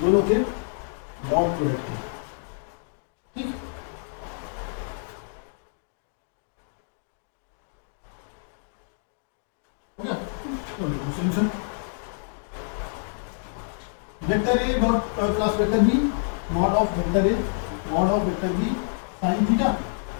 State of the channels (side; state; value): right; silent; digital silence